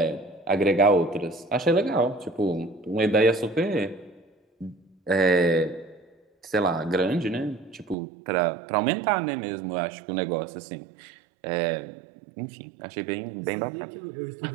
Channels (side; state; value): left; drops out; at 8.0 s